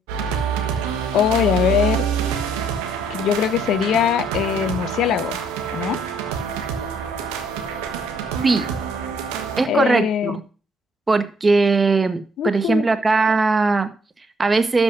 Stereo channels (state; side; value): normal; both; correlation 0.66